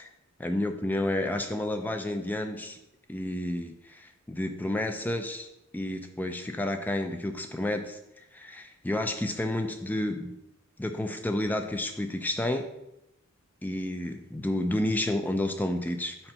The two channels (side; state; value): both; normal; correlation 0.76